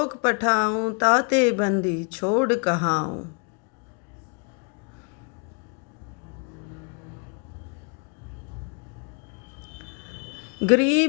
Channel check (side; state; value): right; quieter; 37.5 dB